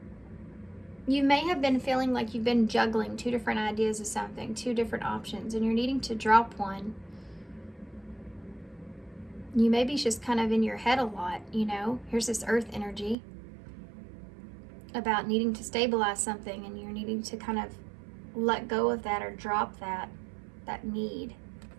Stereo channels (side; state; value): left; drops out; at 13.2 s